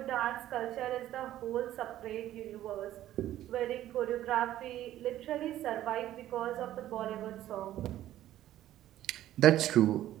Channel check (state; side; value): quieter; left; 13.2 dB